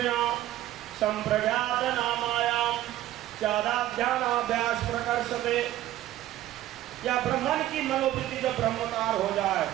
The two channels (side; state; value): left; quieter; 14.2 dB